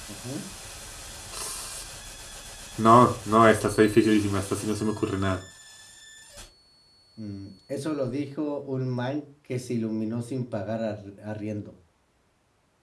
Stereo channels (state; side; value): identical; both; correlation 1.00